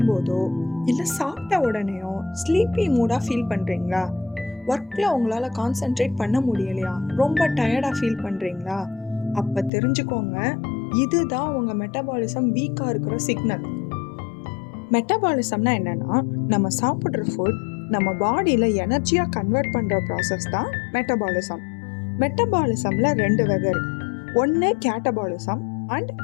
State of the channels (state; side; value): drops out; right; at 9.7 s